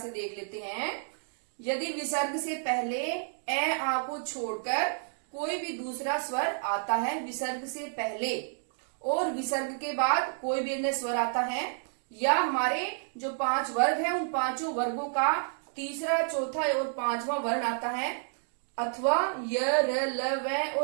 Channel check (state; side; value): silent; left; digital silence